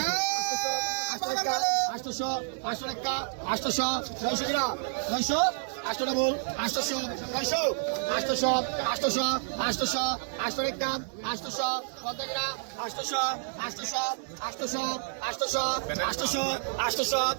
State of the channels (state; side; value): silent; left; digital silence